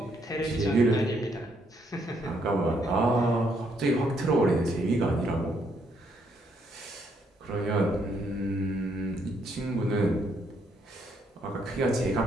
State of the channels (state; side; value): normal; both; correlation 0.72